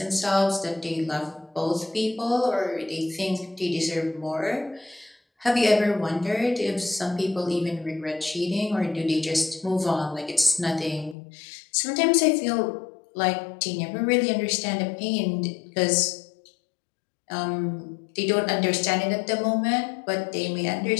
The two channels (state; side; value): drops out; right; at 11.2 s